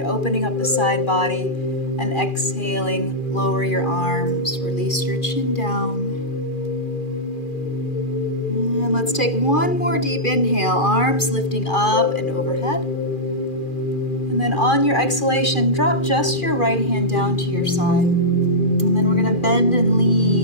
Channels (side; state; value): right; late; 2.4 ms